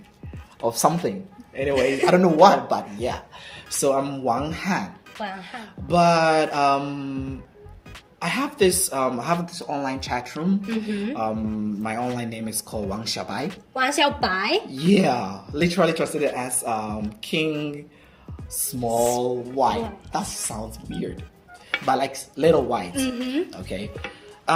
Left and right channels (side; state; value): both; identical; correlation 1.00